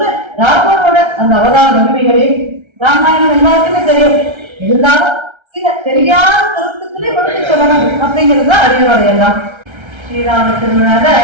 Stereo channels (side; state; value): left; late; 1.3 ms